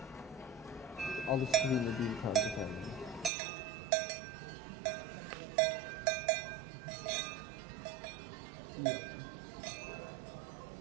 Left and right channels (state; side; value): drops out; left; at 3.3 s